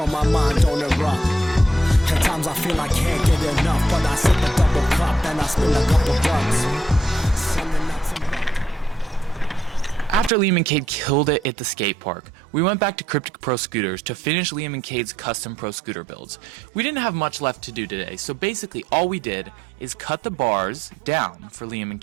my mind don't erupt. At times I feel I can't get enough, but I sip a double cup and I spend a couple bucks. After Liam and Kate killed it at the skate park, we went back to Cryptic Pro Scooters to finish Liam and Kate's custom pro scooter builds. We didn't have much left to do today, so basically all we did is cut the bars down for Liam and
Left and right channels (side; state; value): left; drops out; at 11.5 s